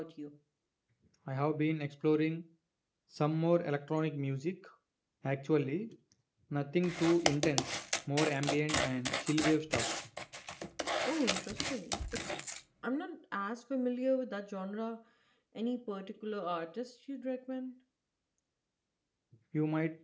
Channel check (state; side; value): identical; both; correlation 1.00